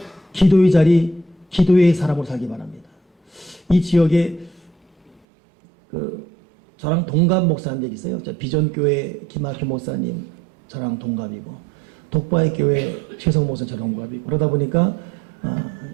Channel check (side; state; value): left; drops out; at 5.2 s